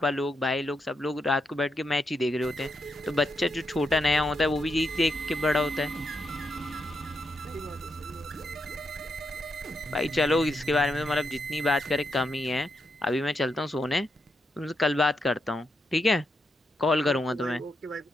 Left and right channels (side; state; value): both; normal; correlation 0.82